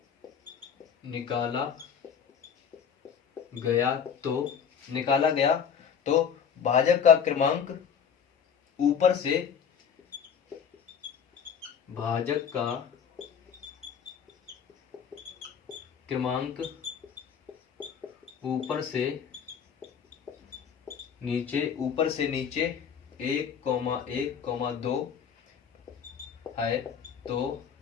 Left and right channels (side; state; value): right; quieter; 7.4 dB